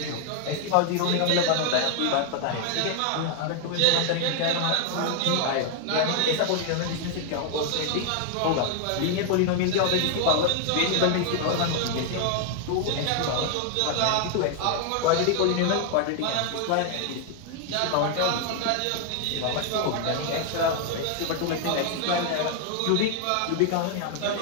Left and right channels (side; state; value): both; different; correlation 0.00